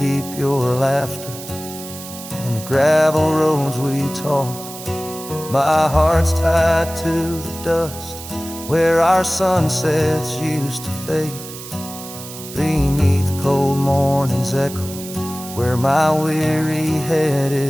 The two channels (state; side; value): noise; right; hiss, 13 dB below the sound